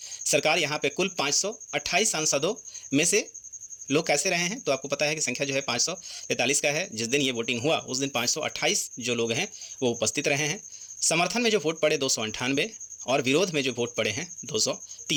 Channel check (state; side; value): identical; both; correlation 1.00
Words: सरकार यहाँ पे कुल 528 सांसदों में से लोग कैसे रहे हैं, तो आपको पता है कि संख्या जो है 543 का है। जिस दिन ये वोटिंग हुआ उस दिन 528 जो लोग हैं वो उपस्थित रहे हैं। समर्थन में जो वोट पड़े 298 और विरोध में जो वोट पड़े हैं